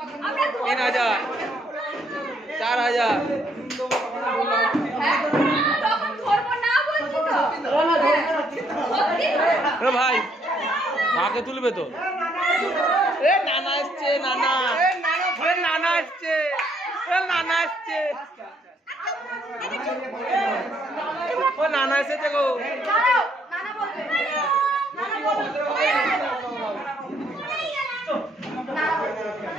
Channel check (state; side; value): normal; both; correlation 0.69